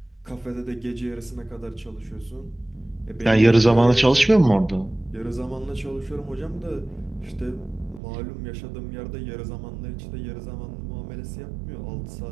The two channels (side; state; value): left; drops out; at 8.0 s